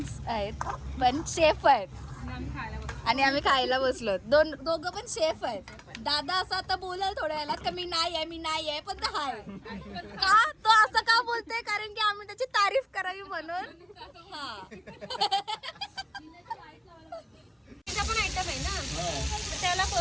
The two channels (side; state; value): both; identical; correlation 1.00